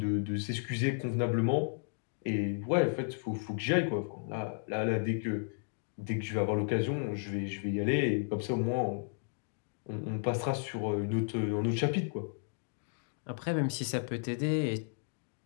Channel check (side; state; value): right; silent; digital silence